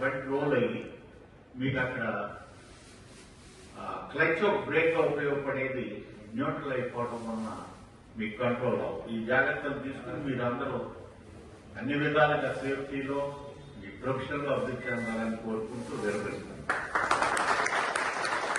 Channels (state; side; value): identical; both; correlation 1.00